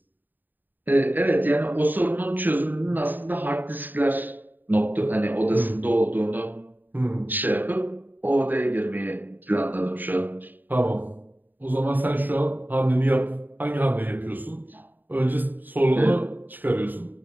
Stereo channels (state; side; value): late; left; 0.089 ms